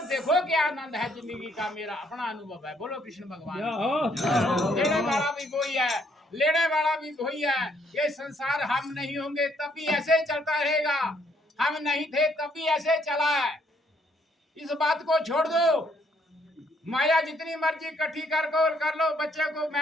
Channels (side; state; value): both; normal; correlation 0.68